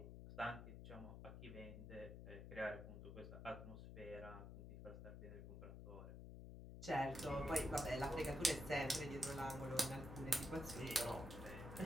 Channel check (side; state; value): left; noise; hum, 9 dB below the sound